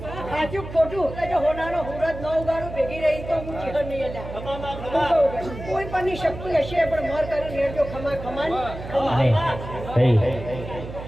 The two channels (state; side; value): noise; right; hum, 11 dB below the sound